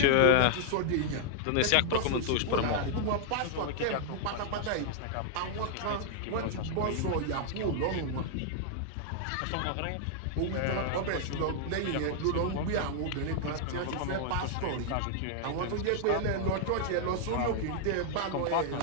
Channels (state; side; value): different; both; correlation -0.01